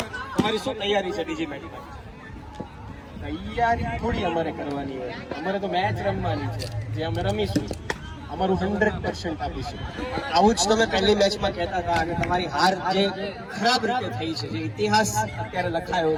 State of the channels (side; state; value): both; identical; correlation 1.00